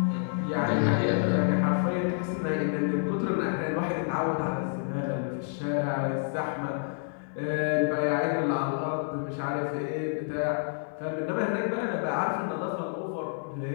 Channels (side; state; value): right; silent; 59 dB below the other